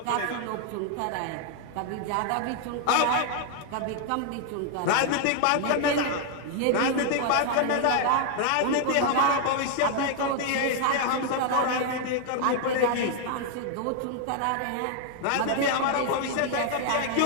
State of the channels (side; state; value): both; different; correlation 0.00